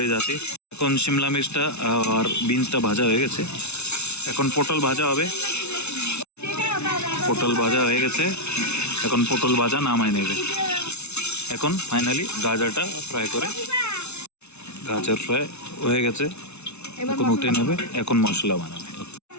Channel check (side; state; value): right; late; 0.81 ms